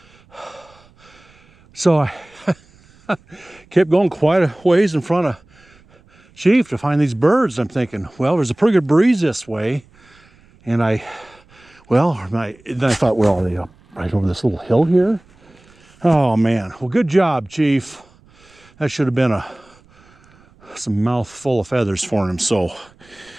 So I kept going quite a ways in front of Chief to find these birds. I'm thinking, well, there's a pretty good breeze this way. And then I thought, well, are they up right over this little hill here? Oh man, well, good job, Chief. That should have been some mouthful of feathers for him. So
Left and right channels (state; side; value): noise; right; rumble, 29 dB below the sound